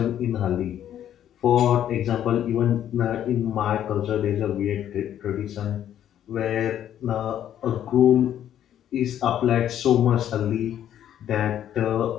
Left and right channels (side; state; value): right; quieter; 10.7 dB